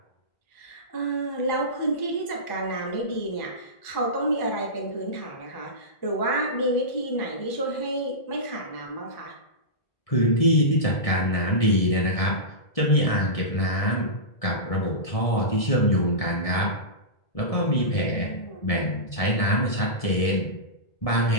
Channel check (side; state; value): right; late; 1.6 ms